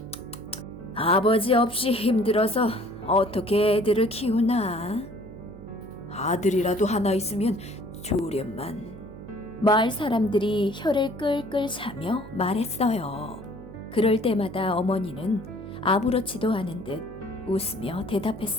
아버지 없이 힘들어서 어떻게 애들을 키우나? 아들이라도 하나 있으면 좋으련만. 마을 사람들이 혀를 끌끌 차며 말했어요. 그럴 때마다 어머니는 아무렇지도 않은 듯 웃으며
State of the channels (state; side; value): noise; right; hum, 15 dB below the sound